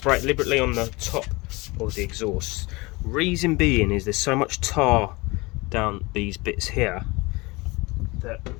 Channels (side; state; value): right; quieter; 24.0 dB